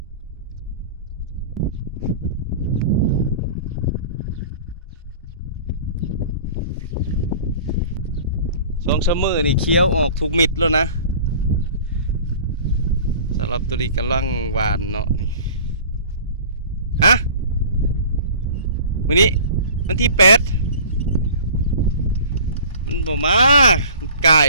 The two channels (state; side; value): inverted; both; correlation -0.43